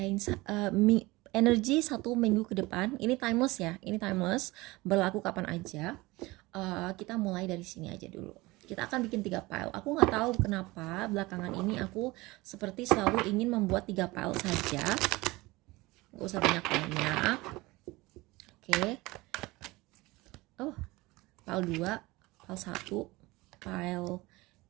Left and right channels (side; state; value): left; quieter; 21.4 dB